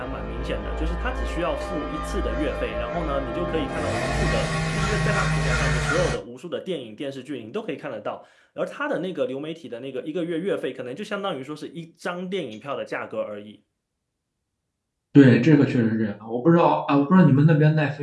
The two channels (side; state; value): both; identical; correlation 1.00